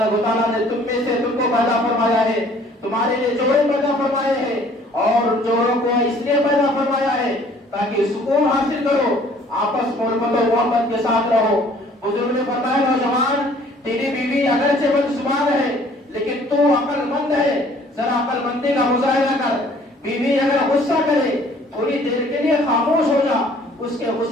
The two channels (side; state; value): both; normal; correlation 0.56